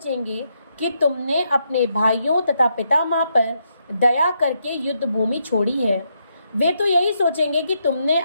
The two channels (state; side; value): inverted; both; correlation -0.80